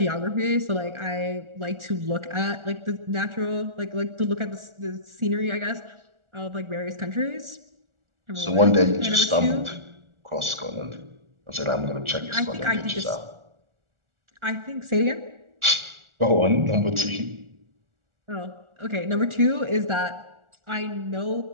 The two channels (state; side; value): late; left; 1.4 ms